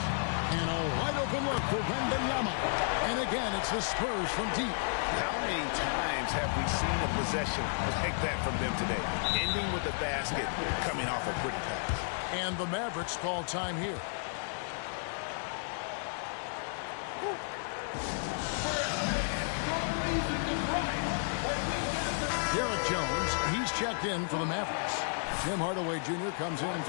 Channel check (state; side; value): silent; right; digital silence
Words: And a wide open look for Wembanyama. And again, it's the Spurs from deep. How many times have we seen a possession like that from them today? Ending with the basket, coming off a pretty pass. And the Mavericks call time here. Derek Jones, he's checked in for the Mavericks. Tim Hardaway Jr. comes in